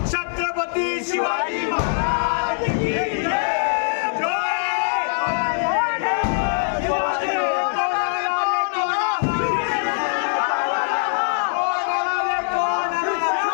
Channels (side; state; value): right; silent; digital silence